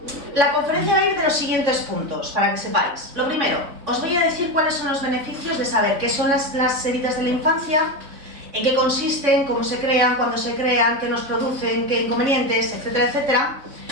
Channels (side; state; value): left; late; 3.6 ms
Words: La conferencia va a ir de los siguientes puntos, para que sepáis. Lo primero, os voy a decir cuáles son los beneficios de saber qué son las heridas de la infancia, en qué consisten, cómo se crean, cuándo se crean, qué nos producen, qué inconvenientes, etcétera, etcétera.